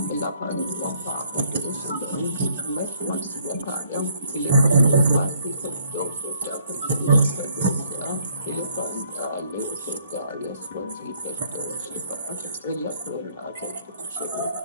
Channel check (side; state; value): both; inverted; correlation -0.65